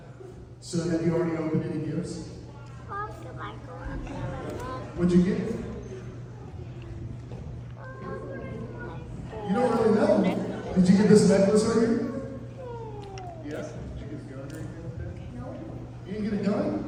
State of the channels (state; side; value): identical; both; correlation 1.00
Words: So have you already opened any gifts? What'd you get? You don't really know. Did you get this necklace right here? Yes. Did you get a gun or anything like that? No. You didn't get a gun?